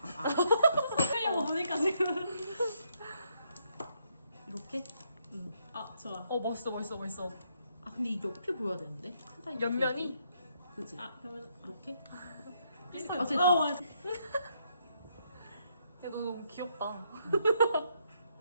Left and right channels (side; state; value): both; inverted; correlation -0.74